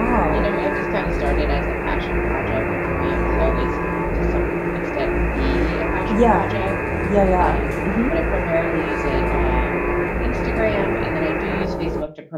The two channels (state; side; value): identical; both; correlation 1.00